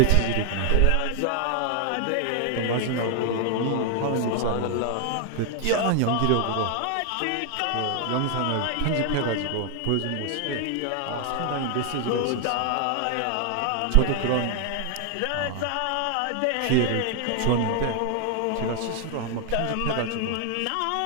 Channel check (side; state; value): both; different; correlation 0.00